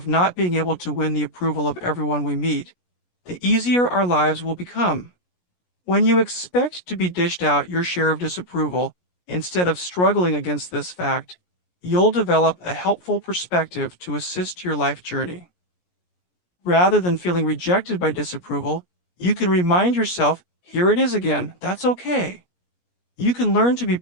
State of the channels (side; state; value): right; late; 16 ms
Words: not being able to win the approval of everyone we meet, the easier our lives will become. When you expect to be dished out your share of disapproval, instead of struggling against this fact, you'll develop a helpful perspective to assist your life journey. Rather than feeling rejected by disapproval, you can remind yourself, here it is again, that's okay. You can learn to be